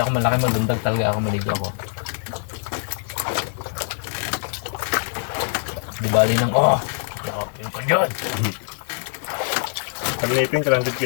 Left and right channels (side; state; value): right; silent; digital silence